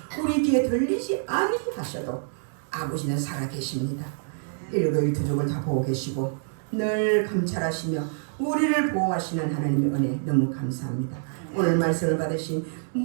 우리 귀에 들리지 아니하셔도 아버지는 살아계십니다. 일거일투족을 다 보고 계시고 늘 감찰하시며 우리를 보호하시는 하나님의 은혜 너무 감사합니다. 오늘 말씀을 받으신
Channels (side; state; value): left; silent; 61 dB below the other